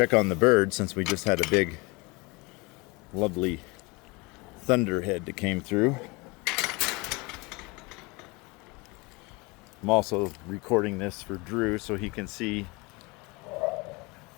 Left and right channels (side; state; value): right; quieter; 26.1 dB